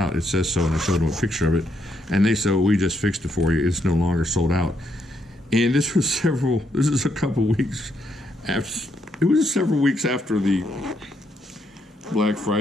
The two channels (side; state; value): both; normal; correlation 0.76